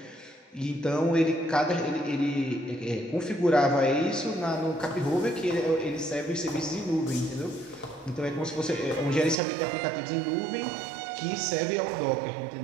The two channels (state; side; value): drops out; left; at 9.3 s